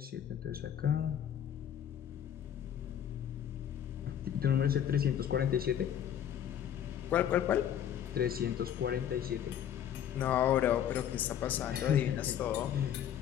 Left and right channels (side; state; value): right; quieter; 9.7 dB